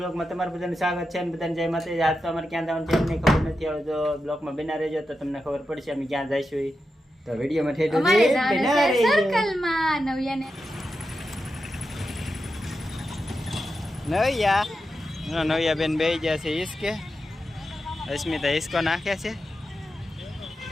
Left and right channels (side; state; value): both; normal; correlation 0.89